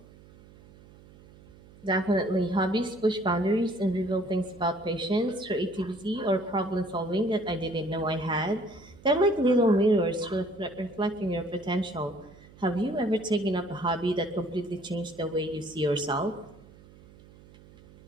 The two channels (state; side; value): noise; right; hum, 23 dB below the sound